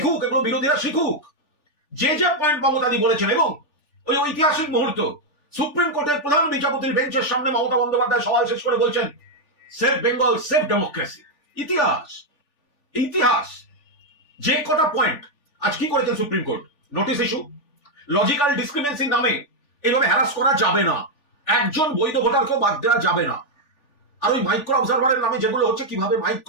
এগুলো বিরোধীরা শিখুক। যে যে পয়েন্ট মমতাদি বলেছেন, এবং ওই ঐতিহাসিক মুহূর্ত সুপ্রিম কোর্টের প্রধান বিচারপতির বেঞ্চের সামনে মমতা বন্দ্যোপাধ্যায় সওয়াল শেষ করে বলছেন, সেভ বেঙ্গল, সেভ ডেমোক্রেসি। ইতিহাস, ইতিহাস। যে কটা পয়েন্ট আজ কি করেছেন Supreme Court, notice issue, logical ডিসক্রিমিনেন্সির নামে এইভাবে হ্যারাস করা যাবে না, একজন বৈধ ভোটারকেও বাদ দেওয়া যাবে না। আর ওই মাইক্রো অবজারভারের নামে যেগুলো হচ্ছে, কিভাবে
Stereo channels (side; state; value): right; late; 3.4 ms